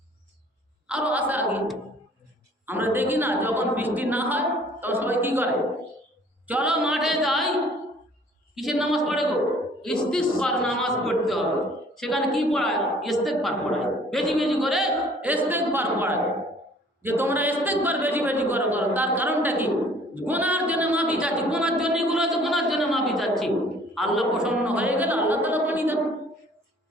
আরো আছে আগে আমরা দেখি না, যখন বৃষ্টি না হয় তখন সবাই কি করে? চলো মাঠে যাই, কিসের নামাজ পড়ে গো? ইস্তিগফার নামাজ পড়তে হবে। সেখানে কি পড়ায়? ইস্তিগফার পড়ায়, বেশি বেশি করে ইস্তিগফার পড়ায়, যে তোমরা ইস্তিগফার বেশি বেশি করে করো। তার কারণটা কি? গুনার জন্য মাফি চাচ্ছি, গুনার জন্য এগুলো আছে, গুনার জন্য মাফি চাচ্ছি। আল্লাহ প্রসন্ন হয়ে গেলে আল্লাহ তাআলা পানি দেন।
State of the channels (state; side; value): normal; both; correlation 0.55